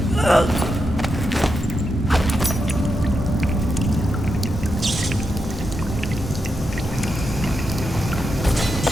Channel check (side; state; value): both; normal; correlation 0.86